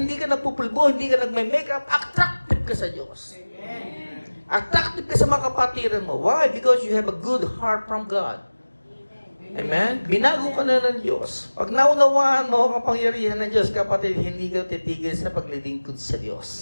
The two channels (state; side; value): inverted; both; correlation -1.00